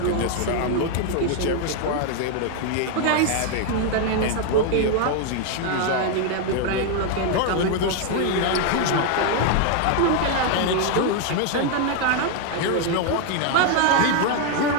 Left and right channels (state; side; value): different; both; correlation 0.01